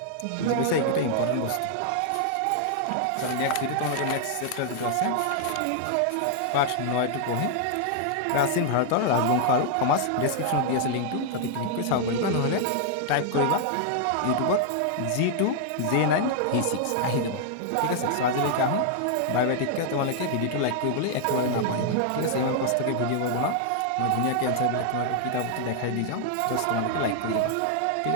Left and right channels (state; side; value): different; both; correlation 0.00